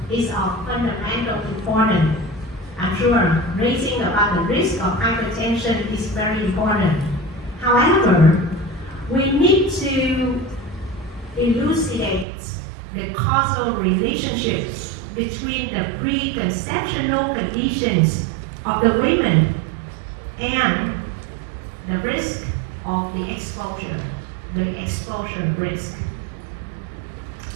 is of fundamental importance. I'm sure raising about the risk of hypertension is very important. However, we need to elucidate the causal relationships between the preconceptional conditions of the women and the risk of the exposure risk.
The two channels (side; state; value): left; drops out; at 12.2 s